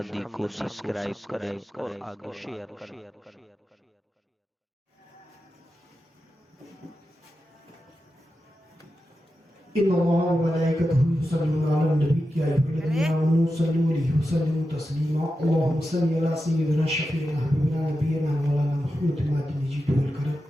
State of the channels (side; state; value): both; normal; correlation 0.90